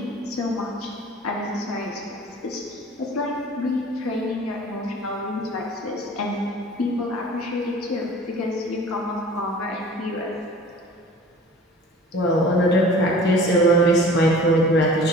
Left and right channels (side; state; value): both; normal; correlation 0.45